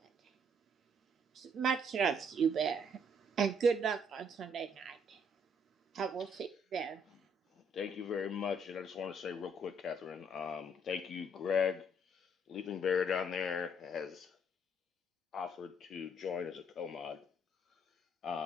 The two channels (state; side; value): normal; both; correlation 0.67